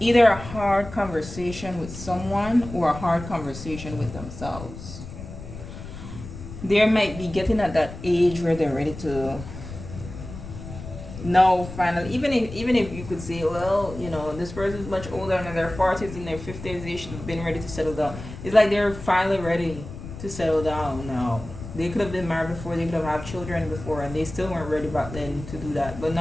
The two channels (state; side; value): noise; left; rumble, 12 dB below the sound